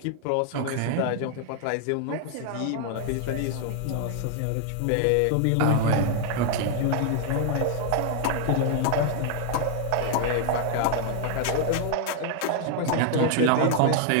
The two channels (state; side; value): different; both; correlation 0.00